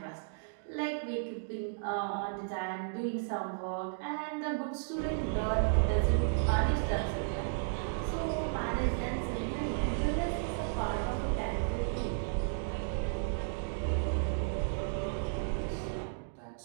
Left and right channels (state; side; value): silent; left; digital silence